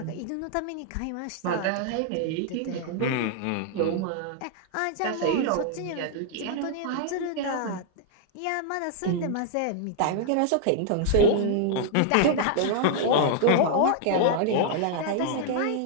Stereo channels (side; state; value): both; different; correlation 0.00